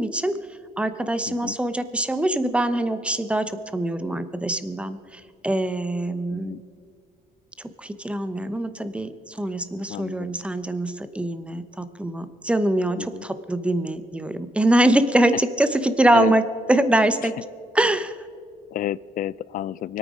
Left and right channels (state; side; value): normal; both; correlation 0.79